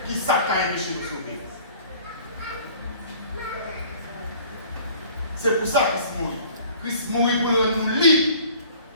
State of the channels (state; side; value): inverted; both; correlation -0.50